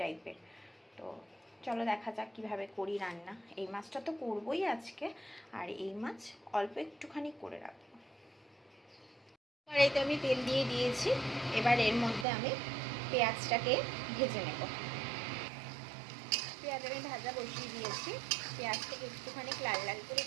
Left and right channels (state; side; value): drops out; left; at 12.2 s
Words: টাইপের। তো চলো দেখা যাক কীভাবে করি রান্না। এই মাছটা তো করবোই আজকে, আর এই মাছ অল্প একটুখানি করে রাখবো। কড়াইতে আমি তেল দিয়ে দিয়েছি, এবার এর মধ্যে আমি পেঁয়াজটাকে ভেজে নেব। পেঁয়াজ আমি ভাজা বসিয়ে দিয়েছি। পেঁয়াজটাকে একটুখানি লাল লাল করে